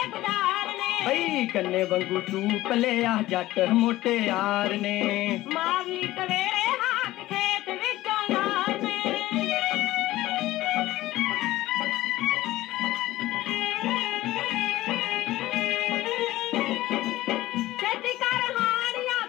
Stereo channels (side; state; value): right; quieter; 16.5 dB